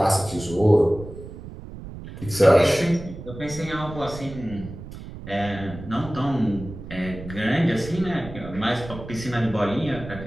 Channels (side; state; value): right; noise; rumble, 13 dB below the sound